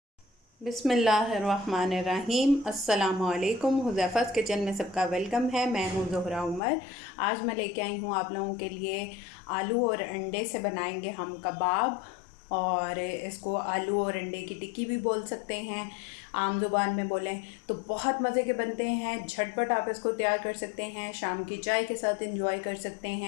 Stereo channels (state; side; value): drops out; right; at 6.6 s